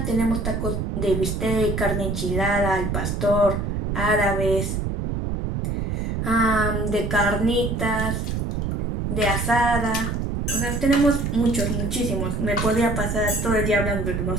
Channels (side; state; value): right; noise; rumble, 1 dB below the sound